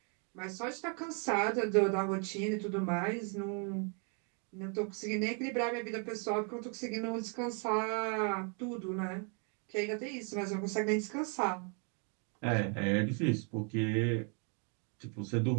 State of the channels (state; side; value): quieter; left; 39.2 dB